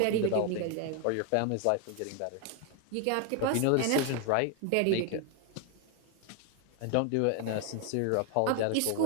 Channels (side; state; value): both; different; correlation 0.01